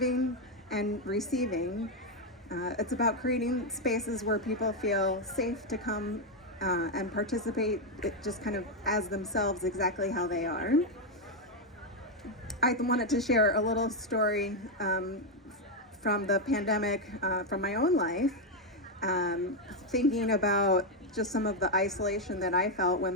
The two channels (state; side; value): normal; both; correlation 0.04